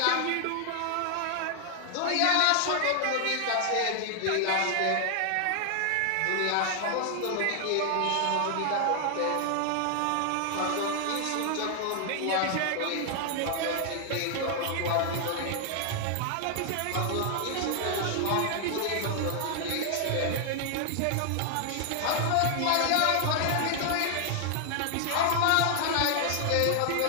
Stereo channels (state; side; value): different; both; correlation 0.00